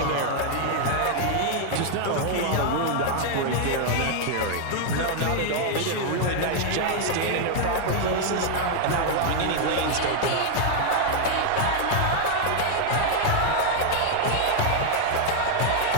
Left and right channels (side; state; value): both; different; correlation 0.00